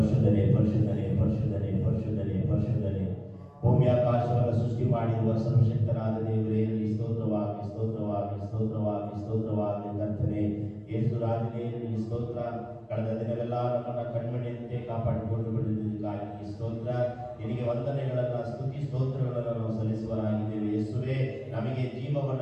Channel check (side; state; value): both; identical; correlation 1.00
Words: ಪರಿಶುದ್ಧನೆ ಪರಿಶುದ್ಧನೆ ಪರಿಶುದ್ಧನೆ ಪರಿಶುದ್ಧನೆ. ಭೂಮಿ ಆಕಾಶವನ್ನು ಸೃಷ್ಟಿ ಮಾಡಿರುವ ಸರ್ವಶಕ್ತನಾದ ದೇವರೇ ನಿನಗೆ ಸ್ತೋತ್ರವಾಗಿ ಸ್ತೋತ್ರವಾಗಿ ಸ್ತೋತ್ರವಾಗಿ ಸ್ತೋತ್ರವಾಗಿ ಕರ್ತನೆ. ಯೇಸು ರಾಜನೇ ನಿನಗೆ ಸ್ತೋತ್ರ. ಕಳೆದ ದಿನವೆಲ್ಲ ನಮ್ಮನ್ನ ಕಣ್ಮಣಿಯಂತೆ ಕಾಪಾಡಿಕೊಂಡು ಬಂದಿದ್ದಕ್ಕಾಗಿ ಸ್ತೋತ್ರ. ನಿನಗೆ ವಂದನೆಗಳನ್ನ ಸ್ತುತಿ ಸ್ತೋತ್ರಗಳನ್ನು ನಾವು ಸಲ್ಲಿಸುವರಾಗಿದ್ದೇವೆ. ಯೇಸುವೇ, ನಮಗೆ